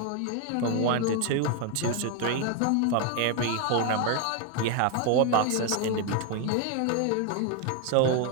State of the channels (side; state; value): both; different; correlation 0.01